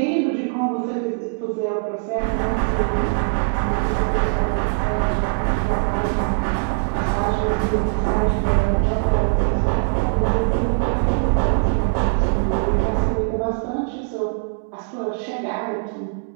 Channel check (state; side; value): silent; left; 65 dB below the other